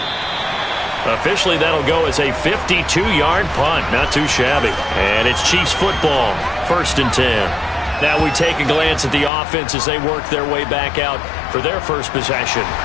Officially, that'll go as a 52-yard punt. Not too shabby. And it's Chiefs football. 1st and 10. Now we take a glance at the offense as they work their way back out for their first possession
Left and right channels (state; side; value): drops out; right; at 9.3 s